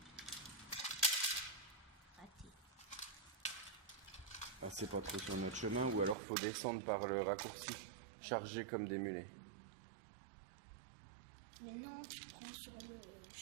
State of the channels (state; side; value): drops out; left; at 6.2 s